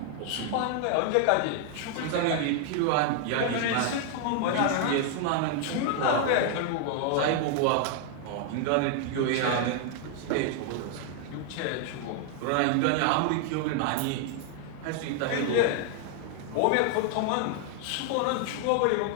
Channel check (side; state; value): both; different; correlation 0.00